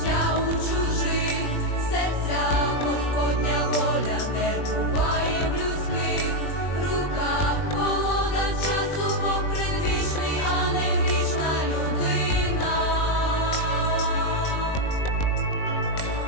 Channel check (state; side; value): late; right; 20 ms